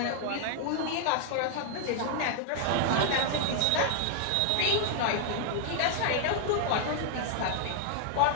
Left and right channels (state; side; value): different; both; correlation 0.00